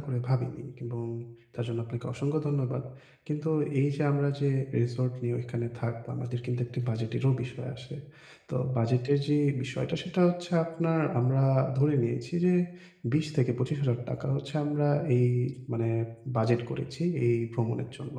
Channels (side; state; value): both; identical; correlation 1.00